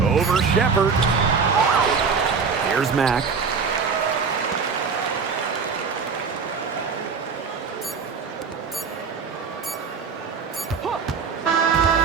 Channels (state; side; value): quieter; left; 5.5 dB